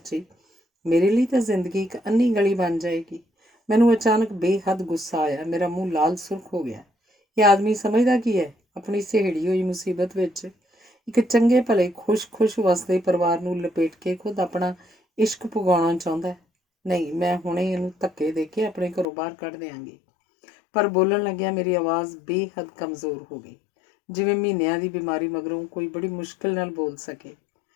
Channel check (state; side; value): drops out; right; at 19.1 s